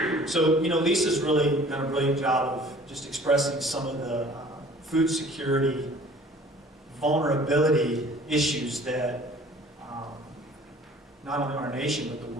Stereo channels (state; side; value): normal; both; correlation 0.50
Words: So, you know, Lisa's really done a brilliant job of just expressing some of the food security vulnerability issues that not only our nation but the